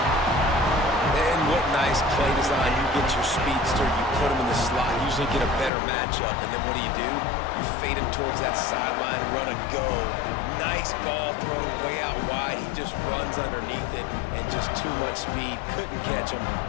Play design, you get your speedster, you put him in the slot, you usually get a better matchup, and then what do? You fade him towards that sideline, run a go. Nice ball thrown way out wide. He just runs underneath it, and just too much speed. Couldn't catch him.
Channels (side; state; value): right; drops out; at 5.7 s